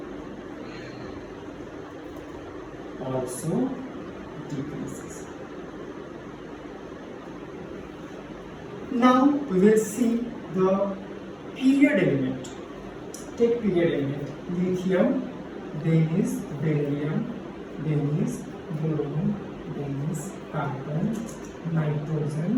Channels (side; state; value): both; identical; correlation 1.00